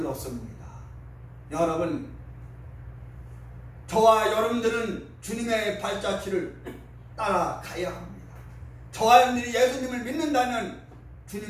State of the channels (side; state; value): both; identical; correlation 1.00